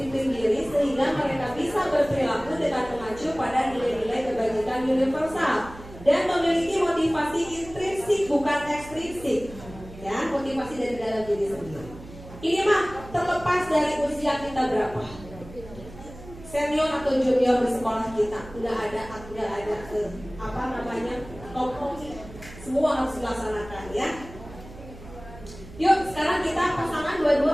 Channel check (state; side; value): noise; right; hum, 17 dB below the sound